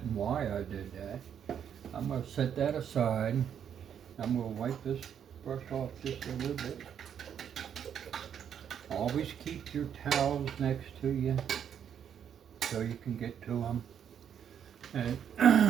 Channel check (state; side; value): quieter; left; 8.6 dB